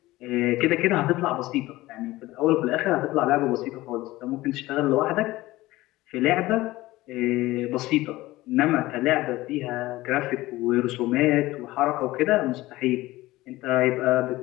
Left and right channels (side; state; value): right; quieter; 18.2 dB